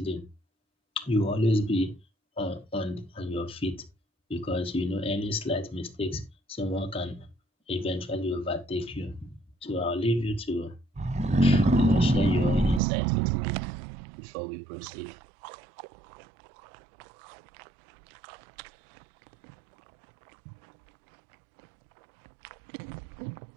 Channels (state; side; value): drops out; left; at 12.8 s